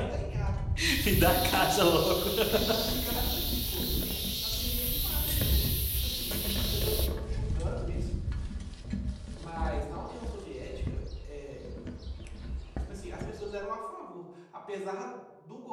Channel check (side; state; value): both; identical; correlation 1.00